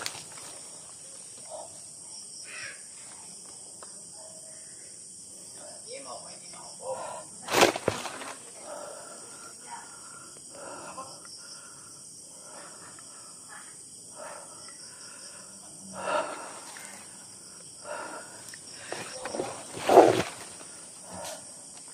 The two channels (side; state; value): both; identical; correlation 1.00